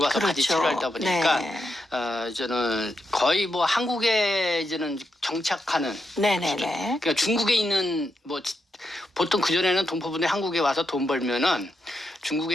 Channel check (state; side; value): normal; both; correlation 0.84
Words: 그렇죠. 바지 치료하다 보니까 네. 저는 거의 뭐 한국에 이제는 정착하는 네네네. 그러니까 중국에 있는 뭐 보통 그전에는 동포분들이 한국에 와서 돈 벌면은